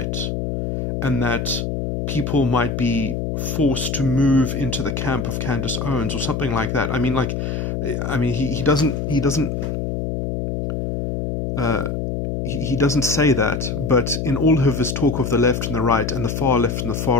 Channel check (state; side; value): noise; left; hum, 2 dB below the sound